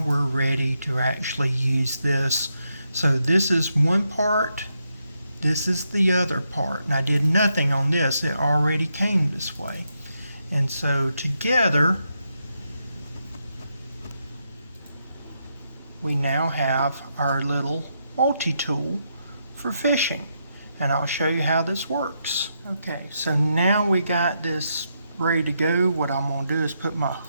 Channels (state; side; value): inverted; both; correlation -0.81